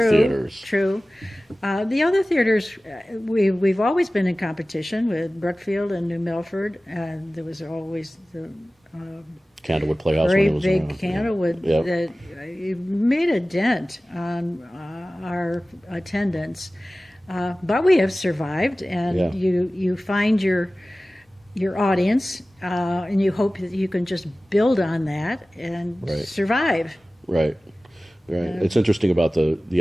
theaters. True. The other theaters, we've always been in competition with Brookfield and New Milford, and there was always the Candlewood Playhouse very when it was big around. Candlewood Yeah. that made a dent on our attendance. But we have survived, and Yeah. you find your audience, and you hope that you can just build on that and Right. survive. Right. Right. It's interesting about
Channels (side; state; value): both; normal; correlation 0.97